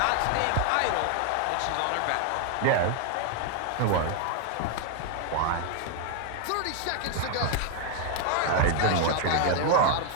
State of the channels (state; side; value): different; both; correlation 0.00